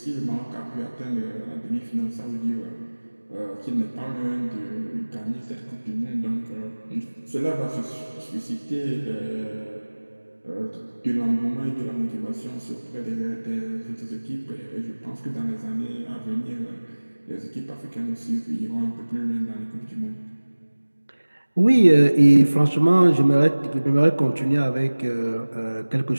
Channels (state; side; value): inverted; both; correlation -1.00